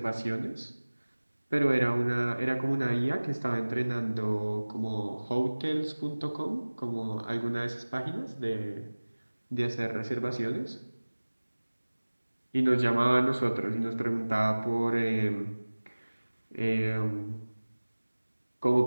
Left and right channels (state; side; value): inverted; both; correlation -1.00